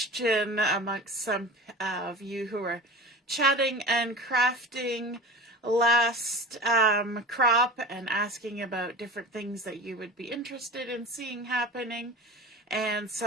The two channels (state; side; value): normal; both; correlation 0.34